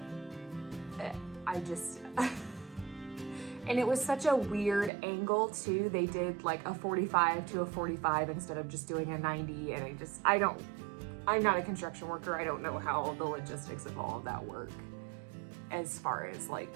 And it was such a weird angle too. They did like a 45 to a 45 instead of just doing a 90, and I'm not a construction worker. I don't know how the logistics of all of that work as far as like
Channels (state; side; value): drops out; left; at 4.9 s